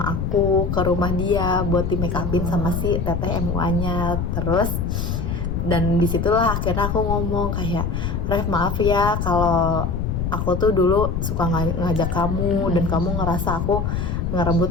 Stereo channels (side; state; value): left; noise; rumble, 1 dB below the sound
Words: aku ke rumah dia buat di make upin sama si teteh MUA-nya. Terus dan disitulah akhirnya aku ngomong kayak, Rev maaf ya kalau aku tuh dulu suka ngajak kamu dan kamu ngerasa aku